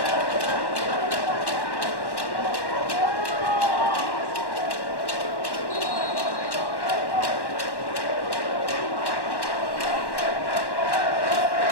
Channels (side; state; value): right; late; 1.1 ms